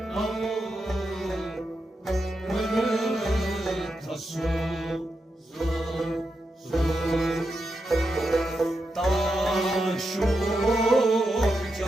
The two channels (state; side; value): normal; both; correlation 0.86